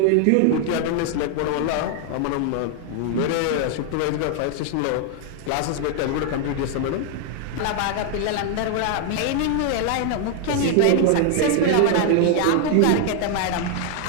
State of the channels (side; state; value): both; different; correlation 0.00